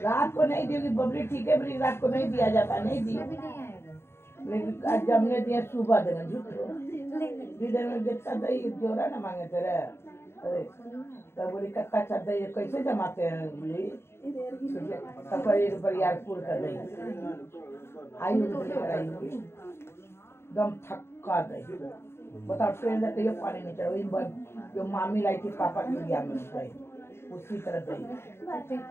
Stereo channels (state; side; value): late; right; 0.12 ms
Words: रात को नहीं दी बबली, ठीक है बबली, रात को नहीं दिया जाता, नहीं दी, लेकिन आज जब ने दिया सुबह देना झूठो लीडर में जितना दही जोड़ा ना मांगे तेरे। अरे तब बोली कत्ता अच्छा दही कैसे जमाते हैं बोली, तब एक बरियारपुर का दही आई होगी दम थक्का दही। बताओ ट्रेन से कहियो पानी नहीं चढ़ा, वही जो मामी लाई थी पापा के लिया में गई उसी तरह दही।